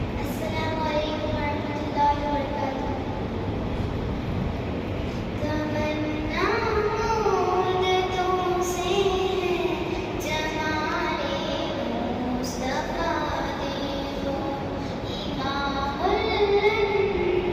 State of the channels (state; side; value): identical; both; correlation 1.00